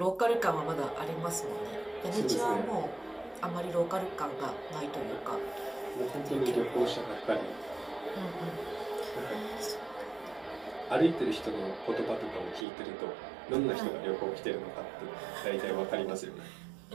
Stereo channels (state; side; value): drops out; left; at 12.7 s